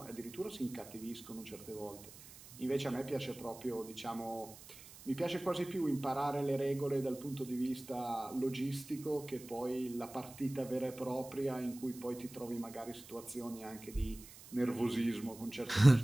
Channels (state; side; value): noise; right; hiss, 17 dB below the sound